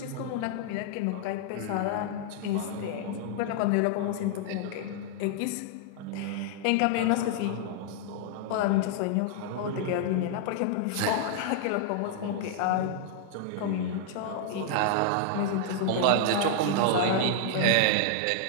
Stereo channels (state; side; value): different; both; correlation -0.01